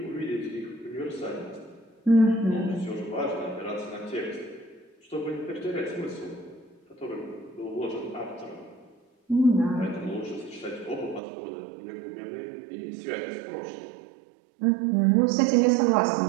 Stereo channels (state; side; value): drops out; left; at 11.2 s